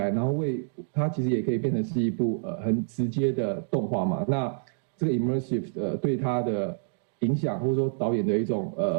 然后它其实也可以变成是一部很直接的动画嘛？那这个 immersive 对它的影响，或者说导演的一种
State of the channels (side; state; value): left; silent; digital silence